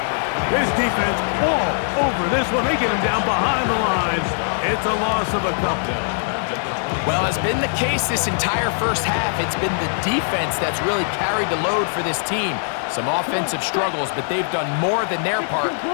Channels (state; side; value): silent; right; 65 dB below the other